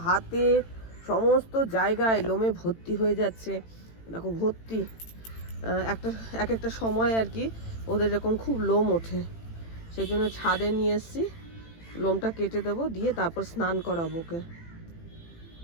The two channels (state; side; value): late; right; 18 ms